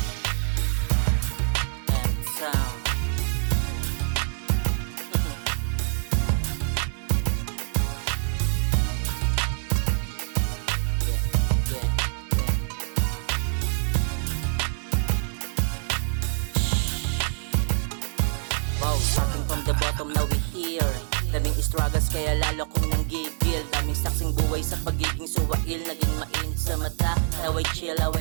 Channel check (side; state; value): left; silent; 61 dB below the other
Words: And sound. Starting from the bottom, now we here. Daming struggles kaya lalo kong nanggigil. Daming saksing buhay sa pagiging suwail. Naging mainit sa mata, how I chill, how